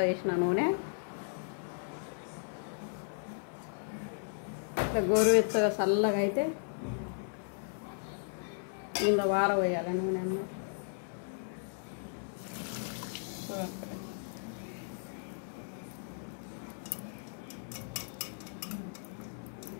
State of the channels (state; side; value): silent; right; 54 dB below the other